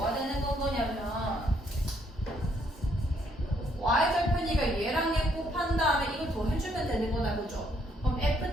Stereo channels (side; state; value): both; normal; correlation 0.70